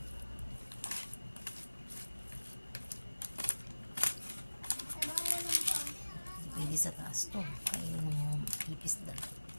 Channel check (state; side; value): inverted; both; correlation -1.00